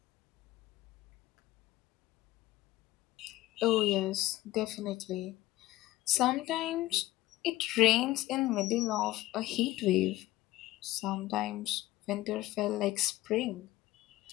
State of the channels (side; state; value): right; quieter; 16.7 dB